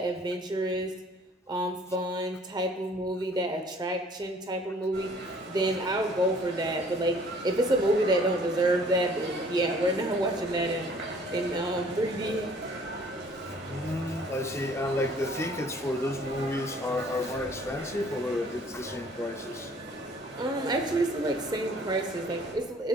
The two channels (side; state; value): both; normal; correlation 0.56